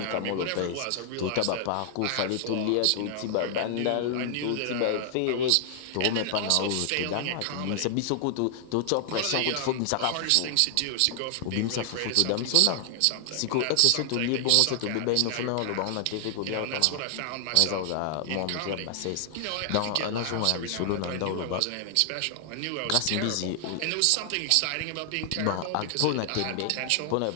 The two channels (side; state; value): both; different; correlation 0.00